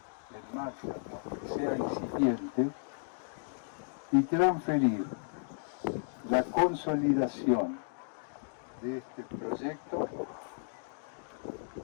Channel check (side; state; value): right; silent; digital silence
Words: en marcha, aunque sea incipiente, y transferir la consolidación de este proyecto